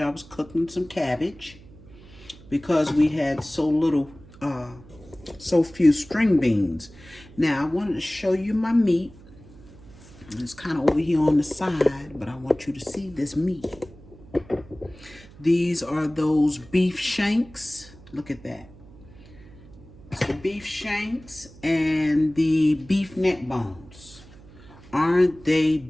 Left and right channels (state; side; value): noise; right; hum, 21 dB below the sound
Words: I was cooking some cabbage because we had so few string beans. Now, I wanted to show you my meat. It's kind of over here on the side, but I want you to see this meat. These are those beef shanks. Look at that. It's the beef shanks and the beef neck bones. Aren't they